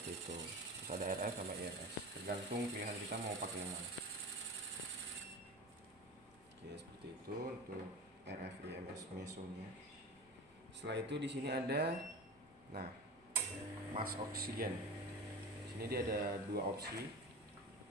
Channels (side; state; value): both; normal; correlation 0.31